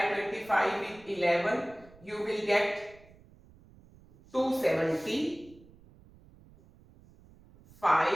25 with 11, you will get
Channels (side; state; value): right; noise; rumble, 25 dB below the sound